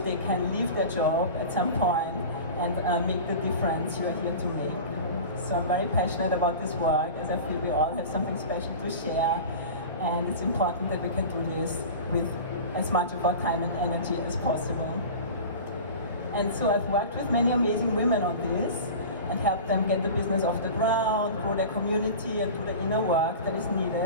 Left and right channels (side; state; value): both; inverted; correlation -0.34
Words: can leave their job at some point and make the difference you are here to make. So I'm very passionate about this work as I feel we all have something special to share, and it's important that we can do this with as much of our time and energy as possible. And so I've worked with many amazing women on this and help them get the business off the ground, grow their community, and do the inner work that is